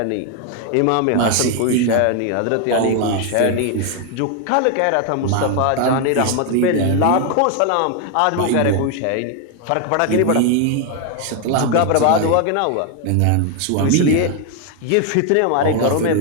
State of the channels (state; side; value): different; both; correlation 0.01